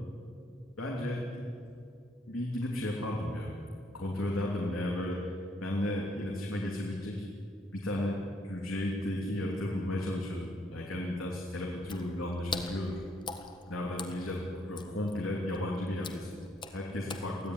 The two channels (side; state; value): both; normal; correlation 0.71